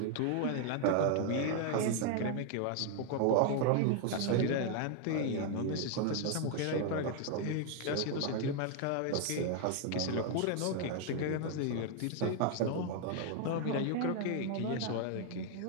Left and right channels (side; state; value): both; different; correlation 0.00